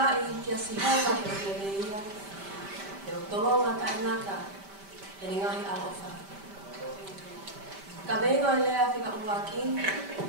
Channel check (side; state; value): left; late; 5.1 ms